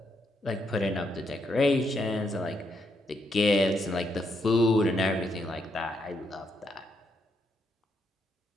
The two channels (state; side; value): normal; both; correlation 0.78